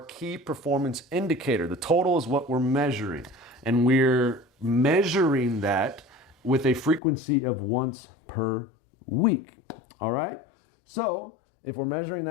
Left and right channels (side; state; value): right; drops out; at 7.0 s